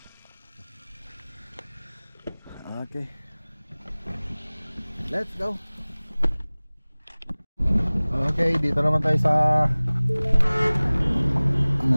Okay. Let's go. Okay, dito naman tayo sa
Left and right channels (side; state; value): both; inverted; correlation -1.00